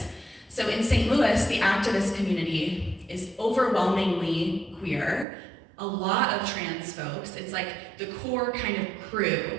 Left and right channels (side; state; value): left; drops out; at 5.2 s